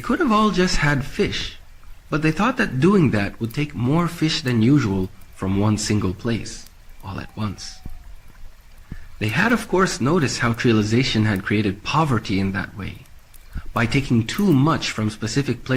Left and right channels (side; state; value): both; identical; correlation 1.00